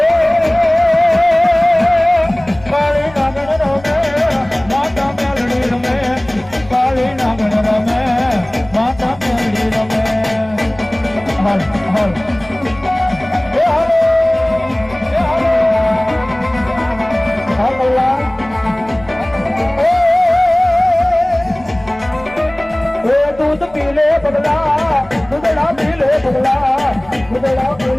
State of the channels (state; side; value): noise; left; rumble, 23 dB below the sound